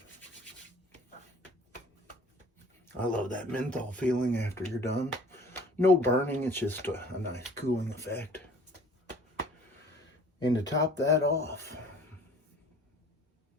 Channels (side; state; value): both; normal; correlation 0.50